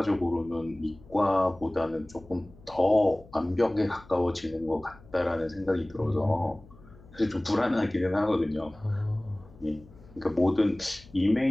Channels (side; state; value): left; noise; hum, 23 dB below the sound